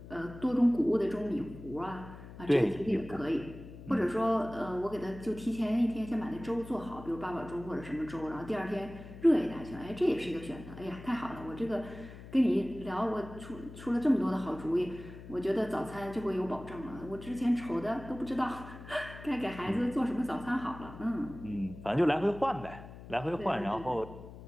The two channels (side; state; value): left; noise; hum, 15 dB below the sound